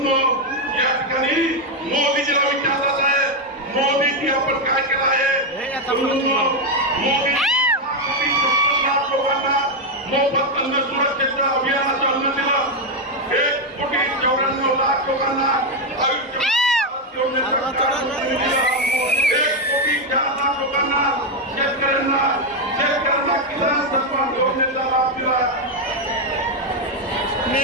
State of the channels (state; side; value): normal; both; correlation 0.04